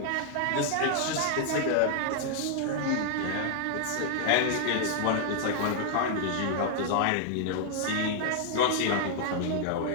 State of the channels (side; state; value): both; different; correlation 0.00